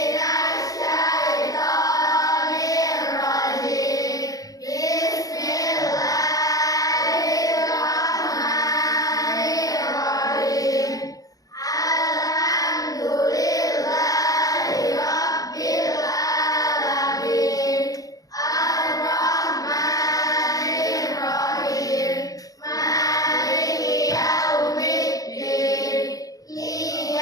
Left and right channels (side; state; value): right; late; 0.17 ms